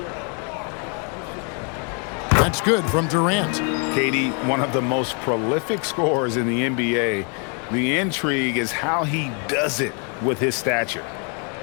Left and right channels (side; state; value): right; quieter; 38.3 dB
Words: That's good from Durant. KD, one of the most prolific scorers in the NBA. The intrigue is how he does it with his stature.